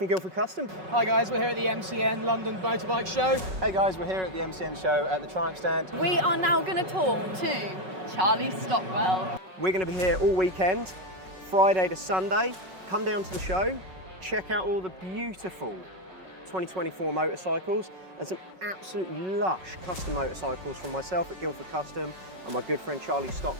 Guildford Custom. Hi guys, we're here at the MCN London Motorbike Show. Hey guys, we're here at the MCN show at the Triumph stand. We are now going to talk to Charlie Stockwell. We're going to be here all weekend, Friday to Sunday. Come down to the show, check out all the beautiful 2024 motorcycles and some absolutely lush custom motorcycles from myself at Guildford Custom and my good friend Charlie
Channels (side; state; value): left; late; 5.4 ms